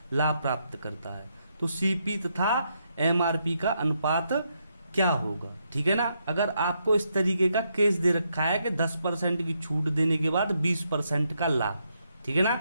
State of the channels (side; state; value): both; inverted; correlation -0.79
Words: लाभ प्राप्त करता है। तो CP तथा MRP का अनुपात क्या होगा, ठीक है ना। अगर आपको इस तरीके का केस दे रखा है कि 10% की छूट देने के बाद 20% का लाभ, ठीक है